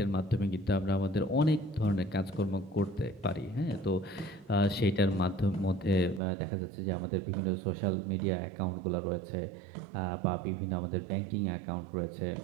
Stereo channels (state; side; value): drops out; left; at 6.2 s